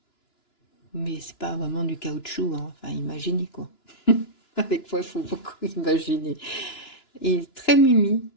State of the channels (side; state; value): right; late; 2.9 ms